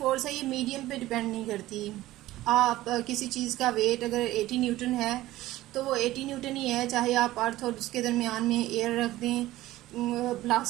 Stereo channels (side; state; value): left; quieter; 16.3 dB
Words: है ये मीडियम पे डिपेंड नहीं करती। आप किसी चीज़ का वेट अगर 80 न्यूटन है तो वो 80 न्यूटन ही है, चाहे आप अर्थ और उसके दरमियान में एयर रख दें,